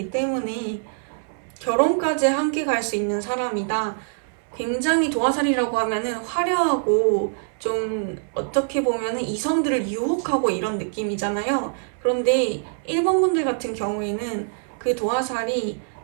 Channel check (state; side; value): silent; left; 60 dB below the other